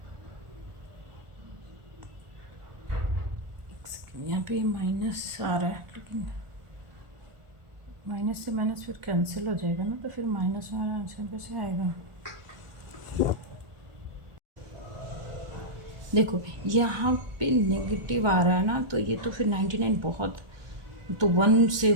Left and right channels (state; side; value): late; left; 1.4 ms